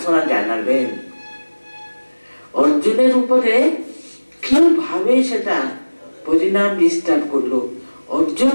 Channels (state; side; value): inverted; both; correlation -1.00